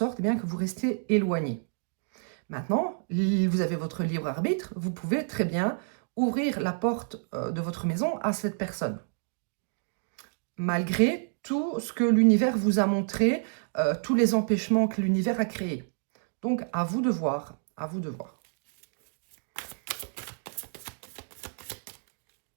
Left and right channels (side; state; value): left; silent; digital silence